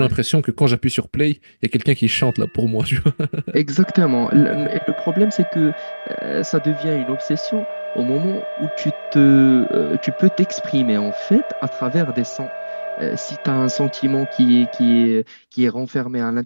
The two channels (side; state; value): both; inverted; correlation -1.00